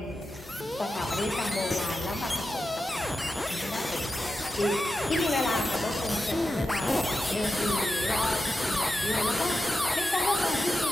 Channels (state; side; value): normal; both; correlation 0.90